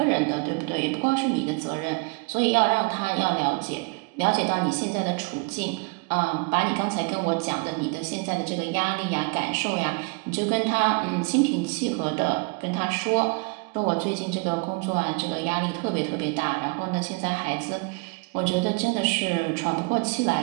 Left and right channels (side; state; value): left; quieter; 32.1 dB